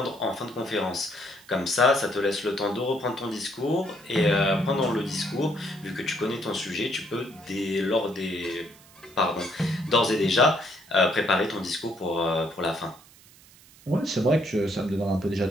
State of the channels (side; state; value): right; noise; hiss, 24 dB below the sound